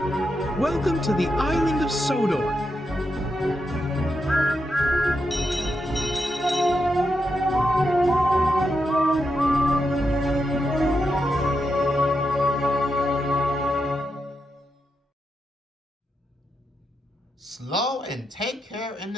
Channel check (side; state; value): both; normal; correlation 0.85